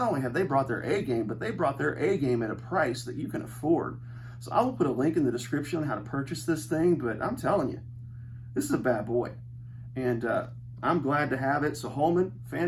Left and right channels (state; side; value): identical; both; correlation 1.00